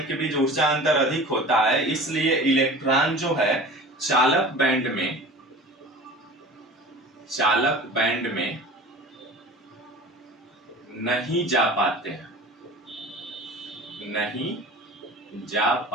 के बीच ऊर्जा अंतर अधिक होता है, इसलिए इलेक्ट्रॉन जो है चालक बैंड में नहीं जा पाते हैं।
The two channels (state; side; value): normal; both; correlation 0.39